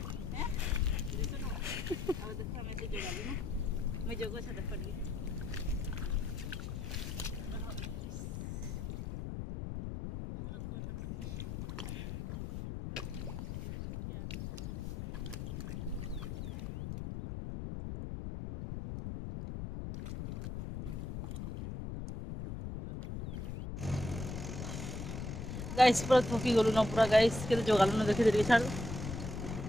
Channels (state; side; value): noise; left; rumble, 5 dB below the sound